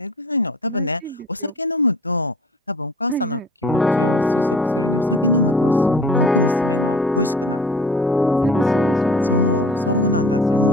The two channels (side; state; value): both; normal; correlation 0.45